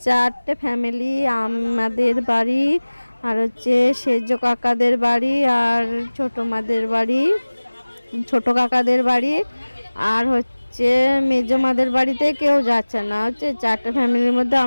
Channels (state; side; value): inverted; both; correlation -1.00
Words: 4টে ফ্যামিলি। আমাদের বাড়ি, আর সেজ কাকাদের বাড়ি, আর ছোটো মাদের বাড়ি, ছোটো কাকাদের বাড়ি, আর মেজো মাদের বাড়িতে কেউ যাচ্ছে না। 4টে ফ্যামিলির মধ্যে